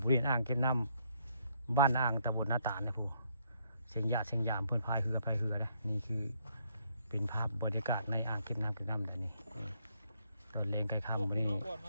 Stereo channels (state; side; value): inverted; both; correlation -0.71